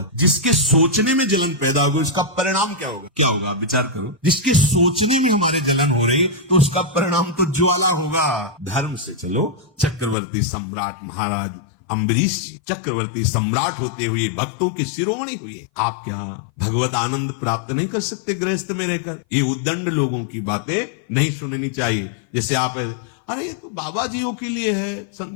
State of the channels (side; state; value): right; drops out; at 10.2 s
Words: जिसके सोचने में जलन पैदा होगी उसका परिणाम क्या होगा? क्या होगा? विचार करो। जिसके सोचने में हमारे जलन हो रही तो उसका परिणाम तो ज्वाला होगा। धर्म से चलो। चक्रवर्ती सम्राट महाराज अम्बरीश जी चक्रवर्ती सम्राट होते हुए भक्तों के शिरोमणि हुए। आप क्या भगवत आनंद प्राप्त नहीं कर सकते गृहस्थ में रहकर? ये उद्दंड लोगों की बातें नहीं सुननी चाहिए। जैसे आप, अरे ये तो बाबा जियों के लिए है,